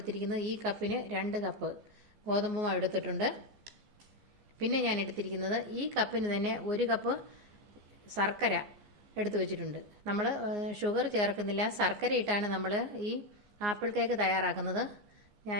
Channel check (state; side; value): late; left; 14 ms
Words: ഈ കപ്പിന് 2 കപ്പ് ഗോതമ്പ് മാവ് എടുത്തിട്ടുണ്ട്. പിന്നെ ഞാൻ എടുത്തിരിക്കുന്നത് ഈ കപ്പിന് തന്നെ 1 കപ്പ് ശർക്കര എടുത്തു വെച്ചിട്ടുണ്ട്. നമ്മൾ ഷുഗർ ചേർക്കുന്നില്ല, ശർക്കര ഇട്ടാണ് നമ്മൾ ഈ ആപ്പിൾ കേക്ക് തയ്യാറാക്കുന്നത്.